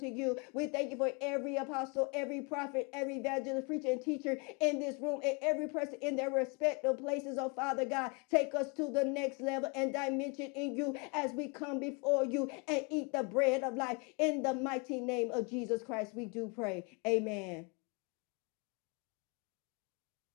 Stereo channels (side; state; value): right; quieter; 32.1 dB